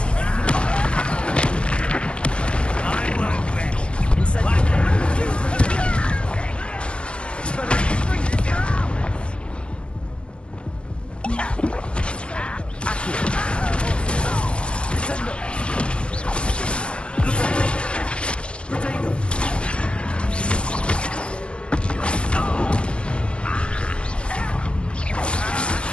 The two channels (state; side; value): late; right; 0.057 ms